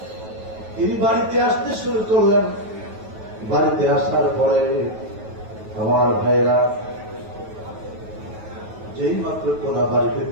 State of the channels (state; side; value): late; left; 9.2 ms